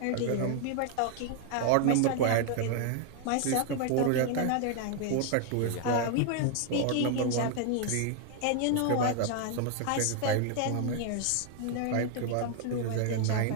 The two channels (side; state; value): both; different; correlation 0.00